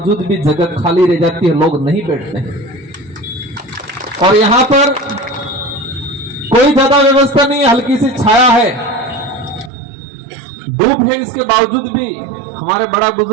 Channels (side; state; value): left; drops out; at 9.7 s